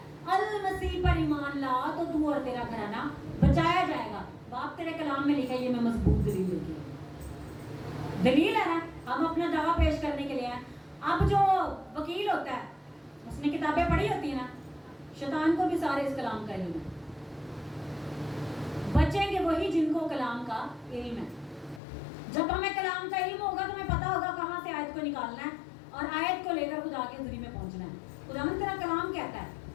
अल मसीह पर ईमान ला तो तू और तेरा घराना बचाया जाएगा। बाप तेरे कलाम में लिखा है, ये मैं मजबूत दलील लेके आई। दलील है ना, हम अपना दावा पेश करने के लिए हैं। अब जो वकील होता है उसने किताबें पढ़ी होती है ना, शैतान को भी सारे इस कलाम का इल्म है। बचेंगे वही जिनको कलाम का इल्म है। जब हमें कलाम का इल्म होगा तो हमें पता होगा कहाँ से आयत को निकालना है और आयत को लेकर खुदा के हुजूरी में पहुंचना है। खुदावंद तेरा कलाम कहता है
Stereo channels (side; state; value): right; drops out; at 21.8 s